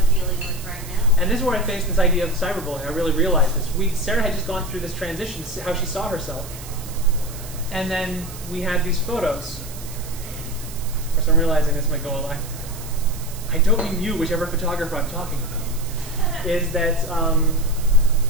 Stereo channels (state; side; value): noise; right; hiss, 15 dB below the sound